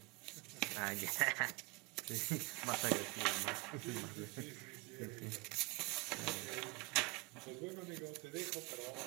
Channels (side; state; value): left; quieter; 26.0 dB